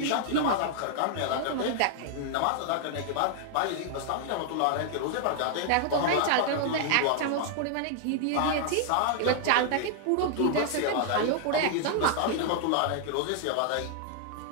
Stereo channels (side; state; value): both; different; correlation 0.00